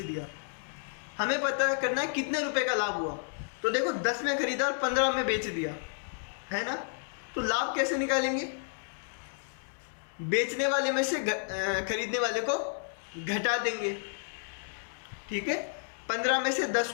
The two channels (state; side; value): silent; right; digital silence